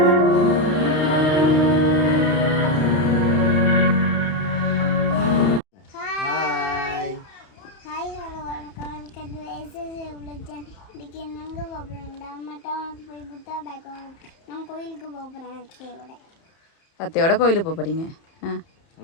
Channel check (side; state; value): right; late; 31 ms